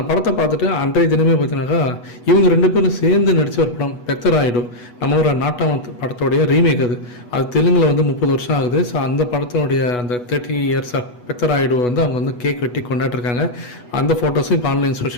படத்தை பார்த்துட்டு அன்றைய தினமே பார்த்தீங்கன்னாக்கா இவங்க ரெண்டு பேரும் சேர்ந்து நடித்த ஒரு படம் பெத்தராயிடு, நம்ம ஒரு நாட்டாம படத்தோடைய ரீமேக். அது தெலுங்கில் வந்து 30 வருஷம் ஆகுது. ஸோ அந்த படத்தினுடைய அந்த 30 இயர்ஸ் ஆஃப் பெத்தராயிடு வந்து அவங்க வந்து கேக் வெட்டி கொண்டாடிருக்காங்க. அந்த ஃபோட்டோஸும் இப்போ ஆன்லைன்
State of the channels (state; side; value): late; right; 8.2 ms